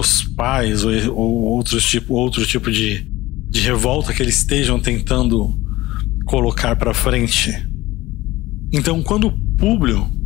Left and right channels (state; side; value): quieter; right; 18.0 dB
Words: pais ou outro tipo de revolta que eles estejam tentando colocar para frente. Então, quando Públio